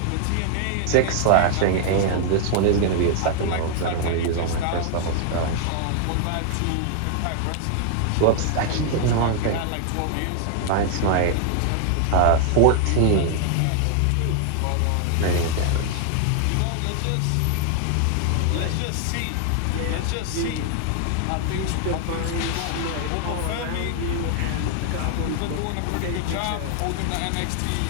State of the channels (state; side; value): different; both; correlation 0.00